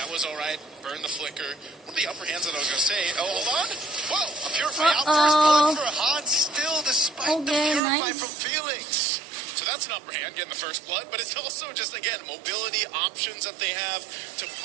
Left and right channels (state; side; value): drops out; left; at 7.8 s